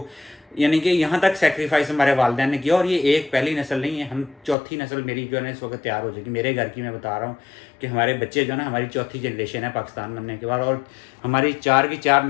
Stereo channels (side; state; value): right; drops out; at 4.5 s